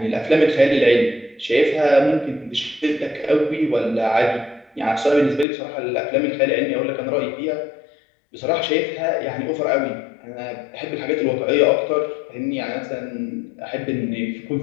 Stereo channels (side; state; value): right; drops out; at 5.5 s